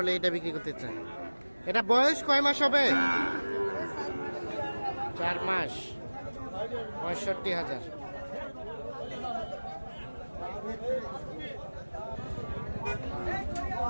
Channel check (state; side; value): inverted; both; correlation -1.00